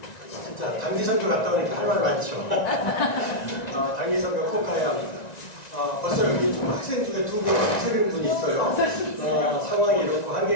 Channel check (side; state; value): right; late; 1.9 ms